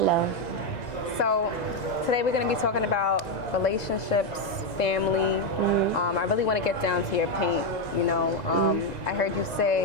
So today we're going to be talking about relationships, family. I really want to get down to your paint. I heard you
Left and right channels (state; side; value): late; right; 1.9 ms